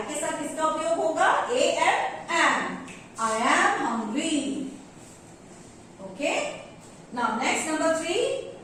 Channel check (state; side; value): identical; both; correlation 1.00